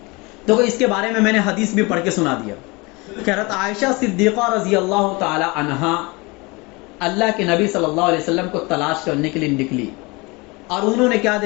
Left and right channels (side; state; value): right; quieter; 25.8 dB